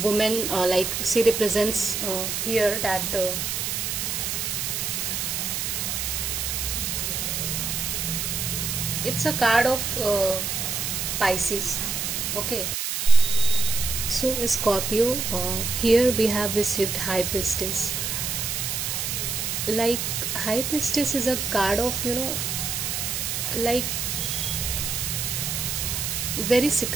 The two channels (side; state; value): right; noise; hiss, 1 dB below the sound